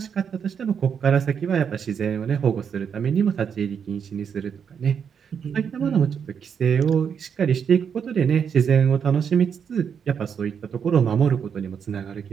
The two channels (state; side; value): quieter; left; 7.2 dB